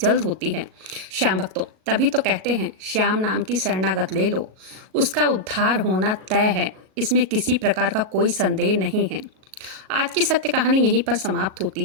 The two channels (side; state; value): left; late; 37 ms